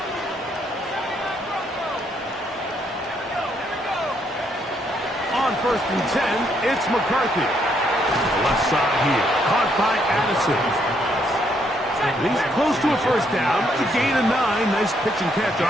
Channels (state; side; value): normal; both; correlation 0.72